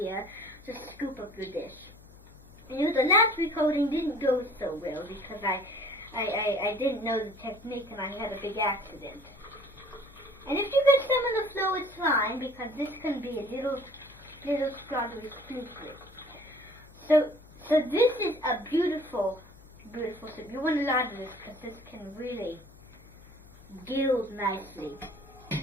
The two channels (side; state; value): left; noise; hum, 23 dB below the sound